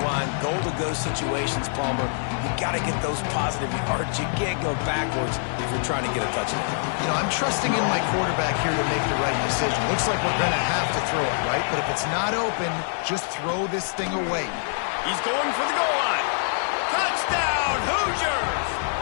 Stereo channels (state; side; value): silent; right; 62 dB below the other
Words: line, goal-to-go situations, Palmer. You got to get those positive yards. You can't go backwards if you're trying to get a touchdown. You know, I'm trusting in my quarterback here to make the right decision. Looks like we're going to have to throw it, right? But if it's not open, just throw this thing away. He's going for the goal line. Touchdown, Hoosiers!